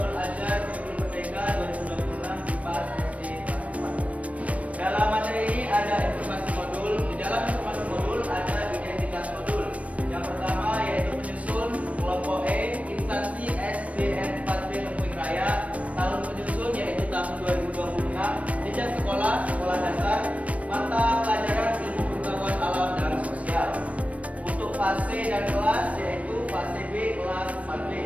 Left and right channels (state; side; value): late; left; 0.066 ms